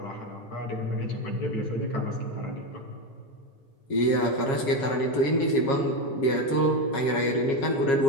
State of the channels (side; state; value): right; late; 7.3 ms